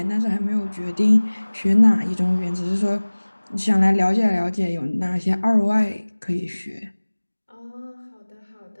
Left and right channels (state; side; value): inverted; both; correlation -1.00